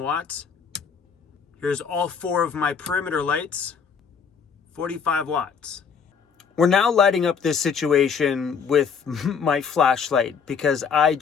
watts. Here's all 4 of my perimeter lights, 45 watts. We're now lighting up this situation with my flashlight because I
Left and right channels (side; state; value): right; quieter; 6.3 dB